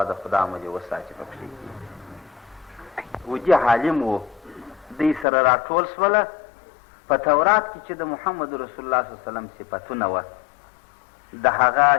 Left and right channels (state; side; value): drops out; right; at 5.2 s